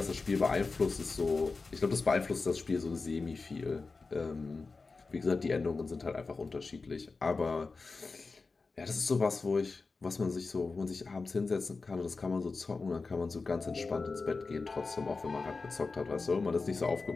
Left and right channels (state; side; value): quieter; right; 4.1 dB